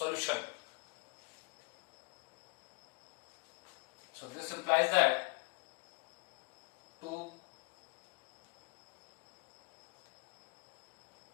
So this implies that 2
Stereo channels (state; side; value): quieter; right; 33.4 dB